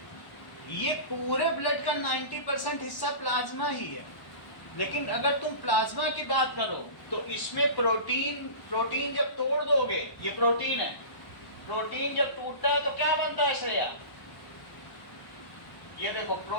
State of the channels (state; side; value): late; right; 1.0 ms